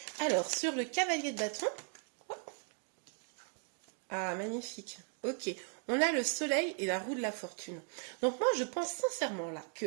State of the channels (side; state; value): left; quieter; 39.7 dB